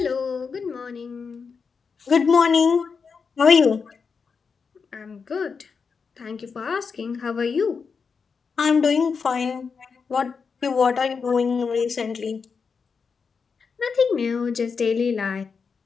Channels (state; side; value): quieter; right; 5.5 dB